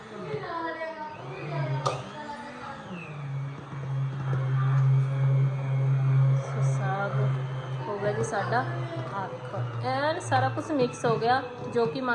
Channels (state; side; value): identical; both; correlation 1.00